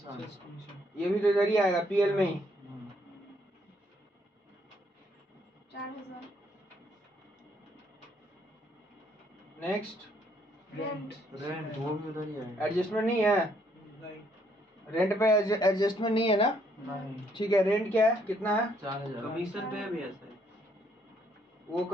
ये भी तो इधर ही आएगा पीएल में ही। 4000। नेक्स्ट रेंट, रेंट वो भी उधर ही आएगा, एडजस्टमेंट नहीं है, रेंट पे एडजस्टमेंट नहीं है ना, ठीक है। रेंट क्या है, कितना है 4000, कमीशन पे भी है सर, वो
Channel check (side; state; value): both; normal; correlation 0.69